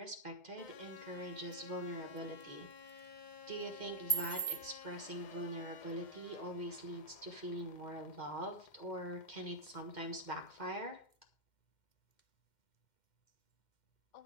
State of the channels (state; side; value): late; right; 2.1 ms